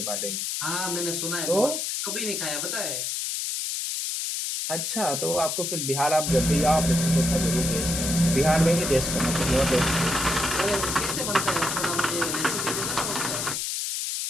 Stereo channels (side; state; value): left; noise; hiss, 2 dB below the sound